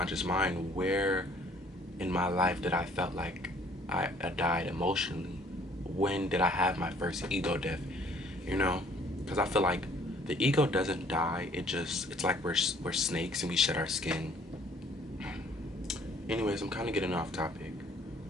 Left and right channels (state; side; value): normal; both; correlation 0.58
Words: mind, where in my life did I felt like I died emotionally? When did I have my first ego death? You know, because I feel like the ego doesn't die. It's like we're snakes and we shed our skin. Anyways, I'm kind of getting off topic.